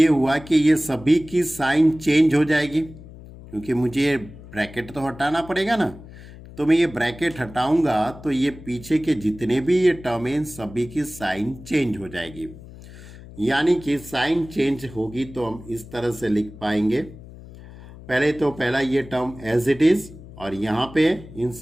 हुआ कि ये सभी की साइन चेंज हो जाएगी, क्योंकि मुझे ये ब्रैकेट तो हटाना पड़ेगा ना, तो मैं ये ब्रैकेट हटाऊंगा तो ये पीछे के जितने भी ये टर्म हैं सभी की साइन चेंज हो जाएगी। यानी कि साइन चेंज होगी तो हम इस तरह से लिख पाएंगे, पहले तो पहला ये टर्म एज इट इज, और यहाँ पे इन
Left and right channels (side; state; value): left; noise; hum, 17 dB below the sound